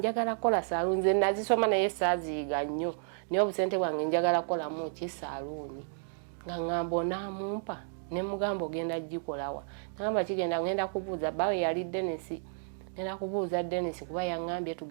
kola saaluuni nze nazisoma naye saaziyiga nnyo naye obusente bwange njagala kolamu ki saaluuni nga ŋŋamba onaamumpa ne mugamba ogenda gikolawa naŋŋamba kigenda ngenda kubuuza bawe yali Denisi ngenda kubuuza Denisi kuba yaŋŋambye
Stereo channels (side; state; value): left; silent; digital silence